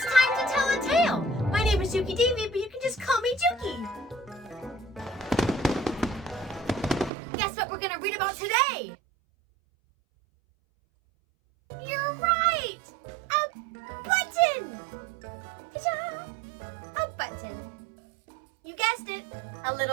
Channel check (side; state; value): left; drops out; at 7.1 s